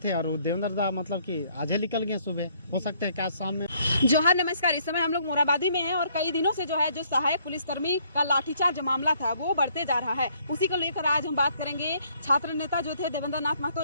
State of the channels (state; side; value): inverted; both; correlation -0.66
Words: और देवेंद्र दा मतलब कि आज ही निकल गए सुबह, हो सकते हैं कि आज शाम में। जोहार, नमस्कार। इस समय हम लोग मोराबादी में हैं और कई दिनों से जो है जो सहायक पुलिसकर्मी का लाठीचार्ज मामला था वो बढ़ते जा रहा है। उसी को लेकर आज हम बात करेंगे। छात्र नेता जो थे देवेंद्र नाथ महतो